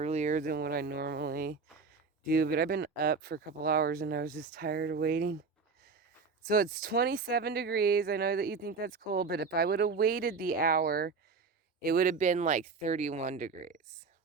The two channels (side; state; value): left; quieter; 4.8 dB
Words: than what I normally do, but I've been up for a couple hours and I was just tired of waiting. So it's 27 degrees. I know that you think that's cold, but if I would have waited the hour, it would have been like 31 degrees.